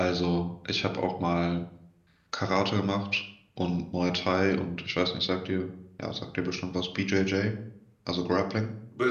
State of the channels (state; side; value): identical; both; correlation 1.00